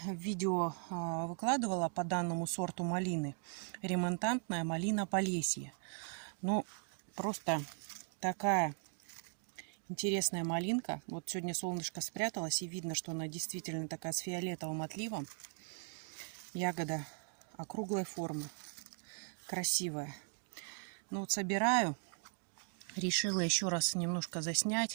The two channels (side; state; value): left; silent; 52 dB below the other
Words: видео выкладывала по данному сорту малины. Ремонтантная малина Полесье. Ну, просто такая интересная малинка. Вот сегодня солнышко спряталось, и видно, что она действительно такая с фиолетовым отливом. Ягода округлой формы, красивая. Ну вот собираю. Решила еще раз немножко